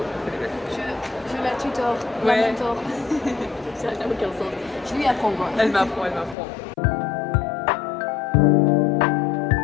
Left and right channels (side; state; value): right; drops out; at 6.4 s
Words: On fait des belles photos. Je la tutor, Ouais. la mentor. Ça n'a aucun sens. Je lui apprends quoi. Elle m'apprend, elle m'apprend.